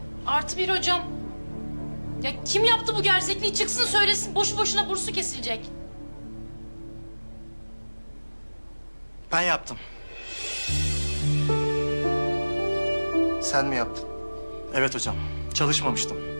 +1 hocam. Ya kim yaptı bu gerzekliği? Çıksın söylesin. Boşu boşuna bursu kesilecek. Ben yaptım. Sen mi yaptın? Evet hocam, çalışmamıştım.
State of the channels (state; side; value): inverted; both; correlation -1.00